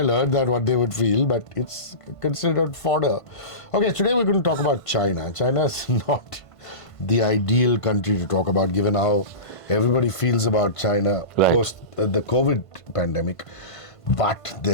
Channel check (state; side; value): late; right; 1.5 ms